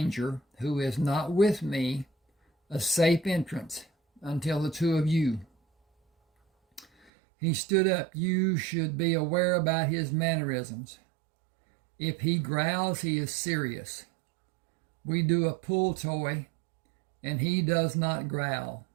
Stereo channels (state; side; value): drops out; left; at 7.1 s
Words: who is not with me a safe entrance until the two of you. He stood up. You should be aware about his mannerisms. If he growls, he is serious. We do a pull toy, and he does not growl.